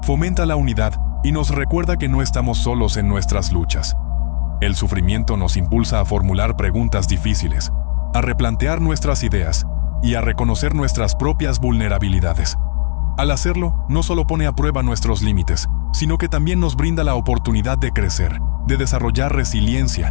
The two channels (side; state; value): right; silent; digital silence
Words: fomenta la unidad y nos recuerda que no estamos solos en nuestras luchas. El sufrimiento nos impulsa a formular preguntas difíciles, a replantear nuestras ideas y a reconocer nuestras propias vulnerabilidades. Al hacerlo, no solo pone a prueba nuestros límites, sino que también nos brinda la oportunidad de crecer, de desarrollar